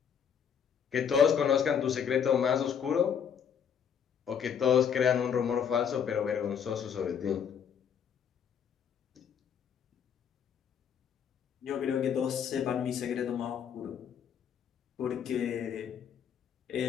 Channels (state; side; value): quieter; right; 7.8 dB